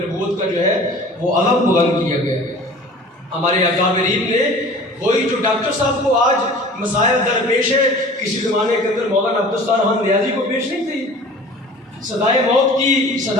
नबूवत का जो है वो अलम बुलंद किया गया है। हमारे अकाबरीन ने वही जो डॉक्टर साहब को आज मसाइल दरपेश है, किसी ज़माने के अंदर मौलाना अब्दुस्तार खान नियाज़ी को पेश नहीं थी। सदाए मौत की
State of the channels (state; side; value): normal; both; correlation 0.43